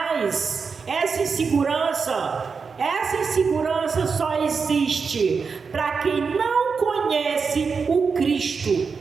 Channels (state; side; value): quieter; left; 5.3 dB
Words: Essa insegurança só existe para quem não conhece o Cristo